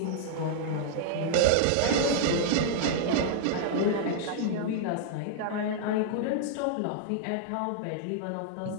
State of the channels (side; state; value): both; different; correlation -0.01